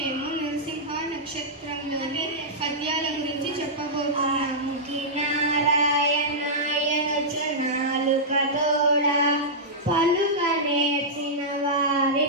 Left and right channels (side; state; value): both; normal; correlation -0.11